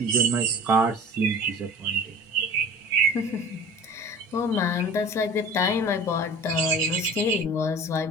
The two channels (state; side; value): normal; both; correlation 0.41